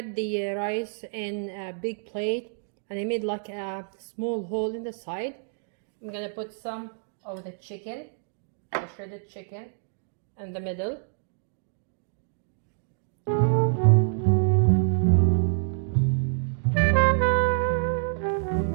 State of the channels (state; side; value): silent; left; digital silence